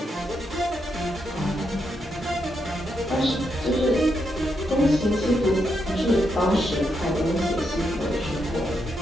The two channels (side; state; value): both; normal; correlation 0.81